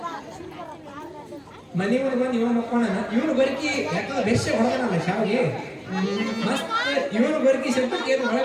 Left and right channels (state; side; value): identical; both; correlation 1.00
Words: ಮನೆ ಮುಂದೆ ಬಂದು ಇವನು ಮಕ್ಕೋಣ ಇವನು ಬರಕಿ ಯಾಕಂದ್ರೆ ಬೆರ್ಷ ಹೊಡೆದನಲ್ಲ ಶಾವಿಗೆ ಮತ್ತೆ ಇವನು ಬರಕಿ ಶಬ್ದಕ್ಕೆ ಏನು